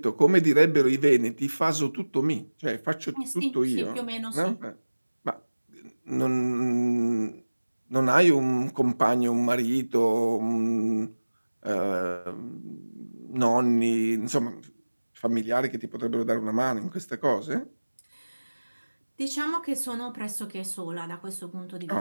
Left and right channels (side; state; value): both; inverted; correlation -1.00